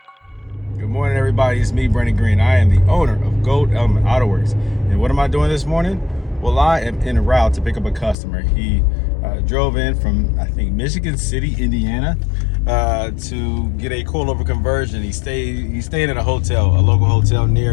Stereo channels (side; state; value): right; drops out; at 8.2 s